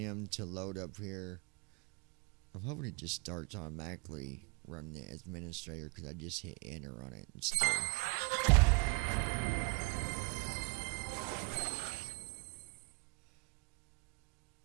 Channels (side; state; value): left; quieter; 31.0 dB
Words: to load up here. I'm hoping it just starts automatically running the administrator because I just hit enter on it instead.